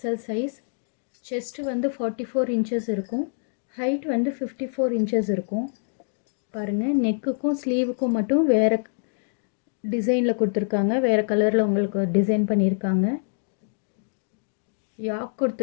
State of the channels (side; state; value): right; silent; digital silence